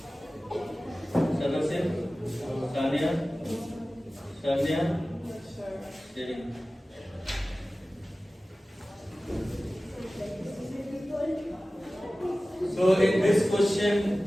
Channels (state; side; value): normal; both; correlation 0.96